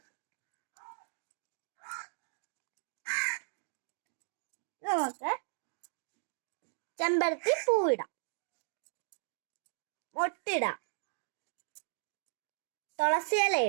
നമുക്ക് ചെമ്പരത്തി പൂവിടാം, മൊട്ടിടാം, തുളസി ഇല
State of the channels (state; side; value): silent; left; digital silence